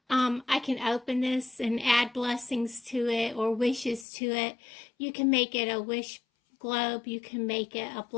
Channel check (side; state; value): right; drops out; at 4.0 s